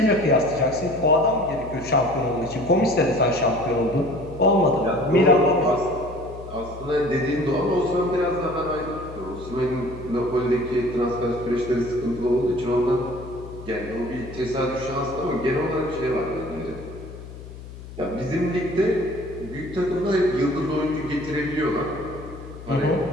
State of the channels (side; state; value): left; noise; hum, 14 dB below the sound